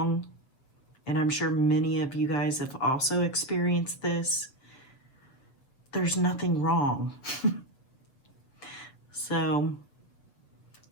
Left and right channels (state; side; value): late; right; 7.5 ms